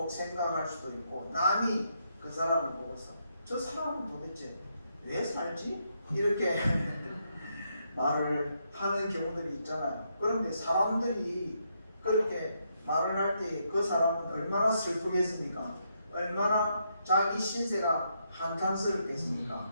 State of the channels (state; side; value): inverted; both; correlation -0.78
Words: 생각할 수도 있고 남이 그 사람을 보고서 저 사람은 도대체 왜 살지? 이렇게 말을 하는 경우들이 있잖아요. 그런데 사람들이 그렇게 말을 할 때 그 사람은 얼마나 슬프겠습니까? 얼마나 자기 신세가 한탄스럽겠습니까?